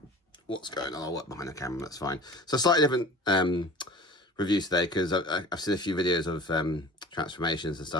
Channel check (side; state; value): both; normal; correlation 0.42